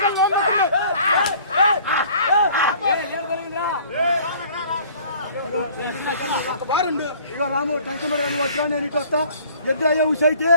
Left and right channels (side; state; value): both; inverted; correlation -0.53